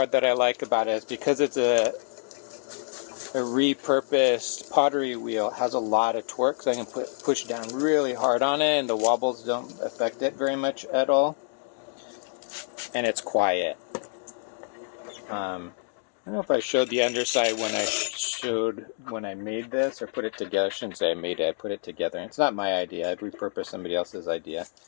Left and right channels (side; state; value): right; silent; 60 dB below the other